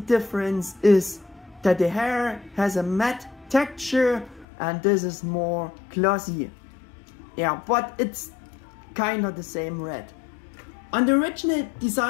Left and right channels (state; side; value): drops out; right; at 4.5 s